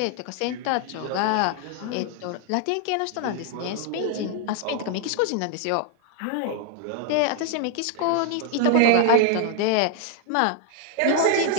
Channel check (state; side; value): different; both; correlation 0.00